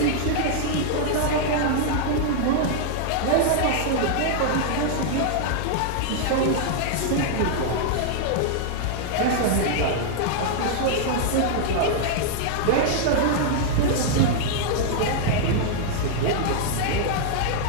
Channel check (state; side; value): different; both; correlation -0.01